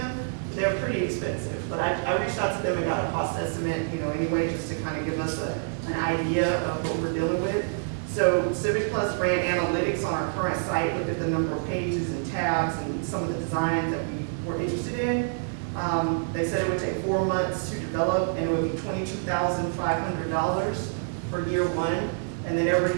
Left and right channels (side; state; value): left; silent; 60 dB below the other